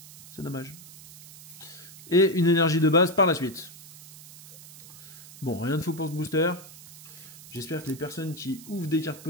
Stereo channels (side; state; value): right; noise; hiss, 17 dB below the sound